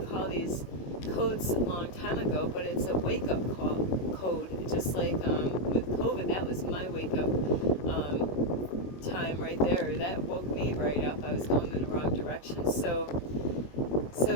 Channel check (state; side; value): late; right; 21 ms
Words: call these codes a long time ago, but it's a wake-up code. Just like with COVID, that was my wake-up time right there. That woke me right up. I was going in the wrong direction. So